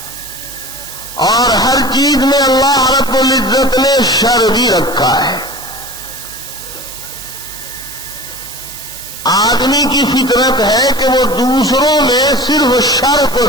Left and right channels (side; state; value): right; noise; hiss, 12 dB below the sound